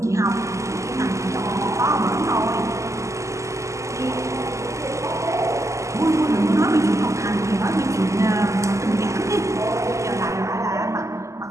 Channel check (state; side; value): late; left; 0.15 ms